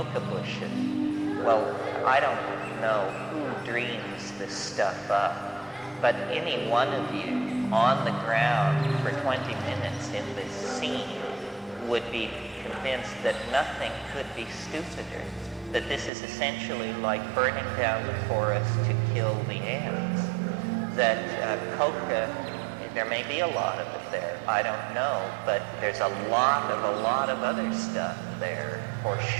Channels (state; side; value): drops out; left; at 16.1 s